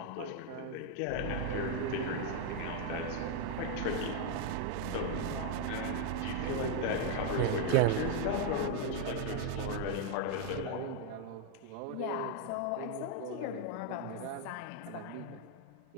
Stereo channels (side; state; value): both; different; correlation 0.00